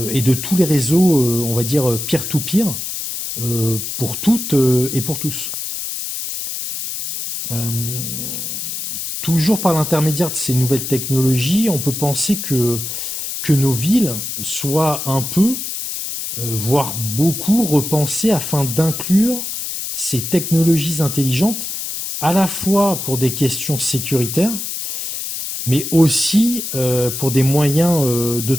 et de tous les réseaux, on va dire, peer-to-peer, pour toutes et pour tous. Euh, Toujours par l'intermédiaire de ces nouvelles technologies, on peut penser que nos villes soient un peu, voire beaucoup, repensées afin d'inclure ces technologies intelligentes à la fois pour des questions sécuritaires, mais aussi pour des moyens de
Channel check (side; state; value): left; noise; hiss, 5 dB below the sound